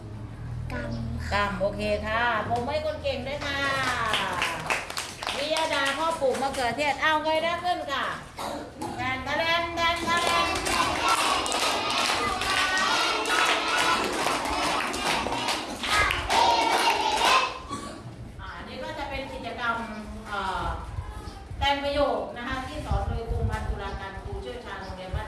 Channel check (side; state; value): both; identical; correlation 1.00